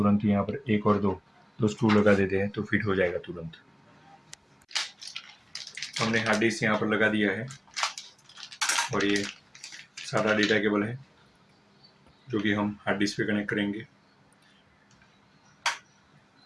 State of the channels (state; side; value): identical; both; correlation 1.00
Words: यहाँ पर 1 और 2 स्क्रू लगा देते हैं तो फिट हो जाएगा तुरंत। हमने हार्ड डिस्क यहाँ पर लगा दिया है और ये सादा डेटा केबल है जो कि हम हार्ड डिस्क पे कनेक्ट करेंगे।